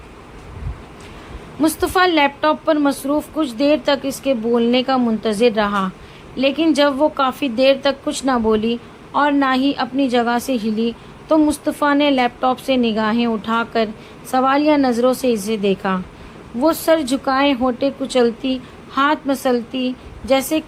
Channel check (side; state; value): both; identical; correlation 1.00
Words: مصطفیٰ لیپ ٹاپ پر مصروف کچھ دیر تک اس کے بولنے کا منتظر رہا، لیکن جب وہ کافی دیر تک کچھ نہ بولی اور نہ ہی اپنی جگہ سے ہلی تو مصطفیٰ نے لیپ ٹاپ سے نگاہیں اٹھا کر سوالیہ نظروں سے اسے دیکھا۔ وہ سر جھکائے ہونٹیں کچلتی، ہاتھ مسلتی جیسے